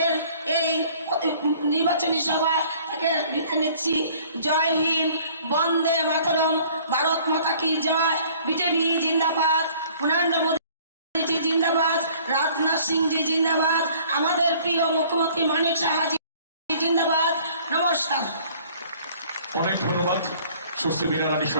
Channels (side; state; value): both; inverted; correlation -0.54